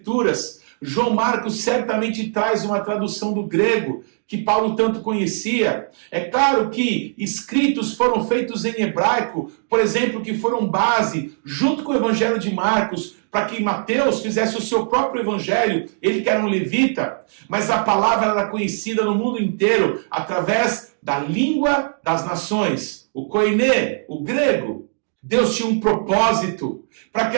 João Marcos certamente traz uma tradução do grego que Paulo tanto conhecia. É claro que escritos foram feitos em hebraico, por exemplo, que foram base, junto com o Evangelho de Marcos, para que Mateus fizesse o seu próprio evangelho, ele que era um levita, mas a palavra era conhecida no mundo inteiro através da língua das nações, o koiné, o grego. Deus tinha um propósito para que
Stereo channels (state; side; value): silent; left; digital silence